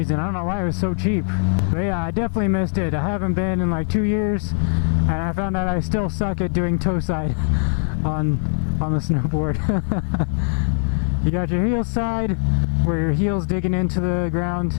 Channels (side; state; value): right; silent; 58 dB below the other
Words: I don't know why it was so cheap. But yeah, I definitely missed it. I haven't been in like 2 years, and I found out I still suck at doing toe side on the snowboard. You got your heel side, where your heel's digging into the ground,